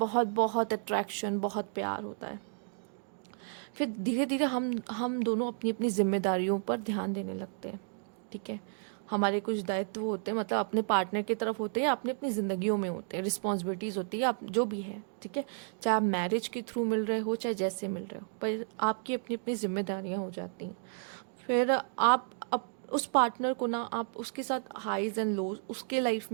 बहुत अट्रैक्शन, बहुत प्यार होता है। फिर धीरे धीरे हम दोनों अपनी अपनी जिम्मेदारियों पर ध्यान देने लगते हैं, ठीक है। हमारे कुछ दायित्व होते हैं, मतलब अपने पार्टनर की तरफ होते हैं या अपनी अपनी ज़िंदगियों में होते हैं, रिस्पॉन्सिबिलिटीज़ होती है, आप जो भी है, ठीक है। चाहे आप मैरिज के थ्रू मिल रहे हो, चाहे जैसे मिल रहे हो, पर आपकी अपनी अपनी जिम्मेदारियाँ हो जाती हैं। फिर आप उस पार्टनर को ना, आप उसके साथ हाईज एंड लोज, उसके लाइफ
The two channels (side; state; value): left; silent; digital silence